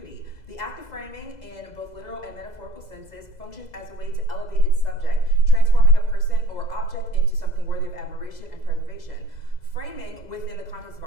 The act of framing, in both literal and metaphorical senses, functions as a way to elevate its subject, transforming a person or object into something worthy of admiration and preservation. Framing, within the context of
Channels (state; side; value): late; right; 2.0 ms